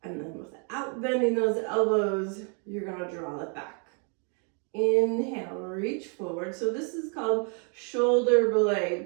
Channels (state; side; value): quieter; left; 39.4 dB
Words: And then without bending those elbows, you're going to draw it back. Inhale, reach forward. So this is called shoulder